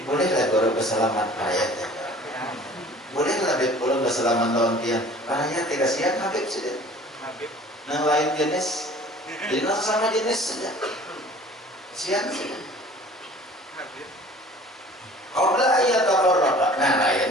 Bolehlah guru bersalaman perayaan. Bolehlah beb pulang bersalaman lawan tiang. Perayaan tidak siap Habib sudah. Nang lain jenis, jadi nang sama jenis saja. Siap sudah. Qabla ayat tafarraqa. Nah, lain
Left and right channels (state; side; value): normal; both; correlation 0.47